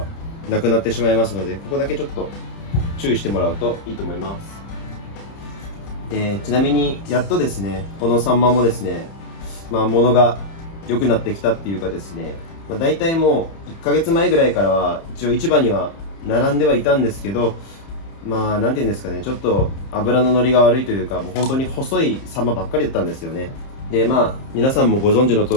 なくなってしまいますので、ここだけちょっと注意してもらうといいと思います。ちなみにやっとですね、このサンマもですね、物が良くなってきたっていうかですね、大体もう1ヶ月前ぐらいからは一応市場には並んではいたんですけど、なんていうんですかね、ちょっと油の乗りが悪いというか、もう本当に細いサンマばっかりだったんですよね。で、皆さんもご存知の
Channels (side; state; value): right; late; 30 ms